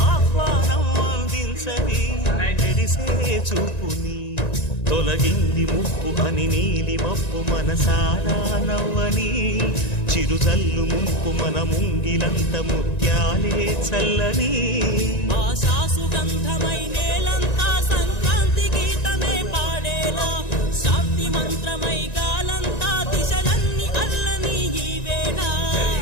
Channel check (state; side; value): late; right; 1.9 ms